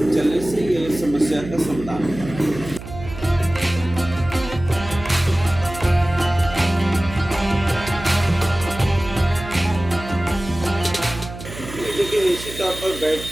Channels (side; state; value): right; noise; hum, 12 dB below the sound